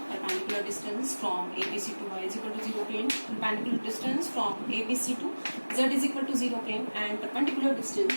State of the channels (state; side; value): inverted; both; correlation -1.00